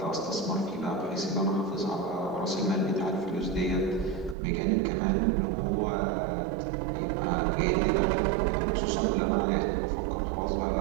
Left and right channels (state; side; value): drops out; left; at 4.4 s